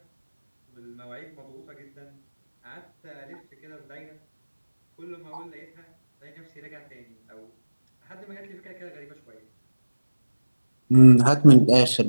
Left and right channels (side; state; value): both; inverted; correlation -1.00